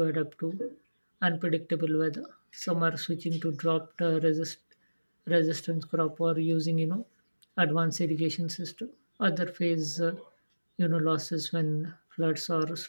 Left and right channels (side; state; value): both; inverted; correlation -1.00